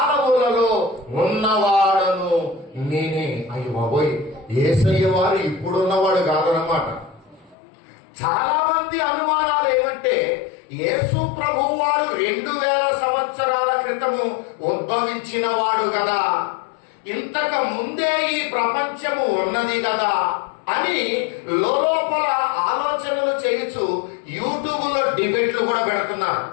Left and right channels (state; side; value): drops out; right; at 7.6 s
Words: ఉన్నవాడను నేనే. అయ్యో బాబోయ్, యేసయ్య వారు ఇప్పుడున్నవాడు కాదన్నమాట. చాలా మంది అనుమానాలు ఏమంటే, యేసు ప్రభువు వారు 2000 సంవత్సరాల క్రితము ఉద్భవించిన వాడు కదా, ఇంతకు ముందే ఈ ప్రపంచము ఉన్నది కదా అని లోపల ఆలోచనలు చేయించు యూట్యూబ్ లో డిబేట్లు కూడా పెడుతున్నారు.